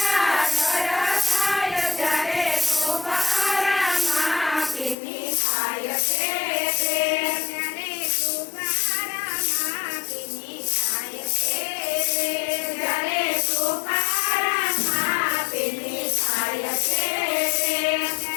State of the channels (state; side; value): drops out; right; at 5.0 s